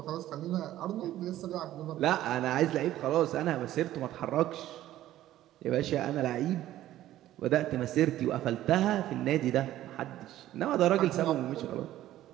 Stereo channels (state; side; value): quieter; left; 13.7 dB